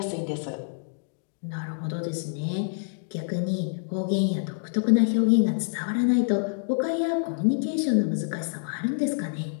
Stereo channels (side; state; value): right; silent; digital silence